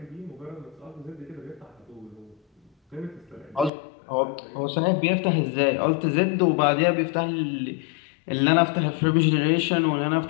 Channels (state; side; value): drops out; right; at 3.7 s